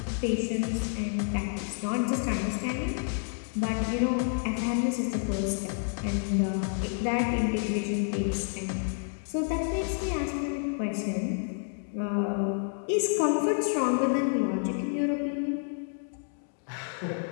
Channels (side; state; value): right; silent; 58 dB below the other